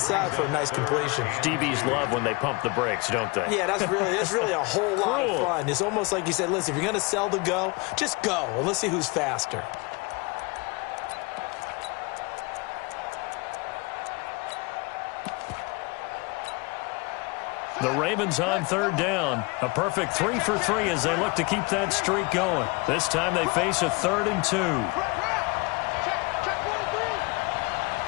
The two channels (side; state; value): right; quieter; 27.2 dB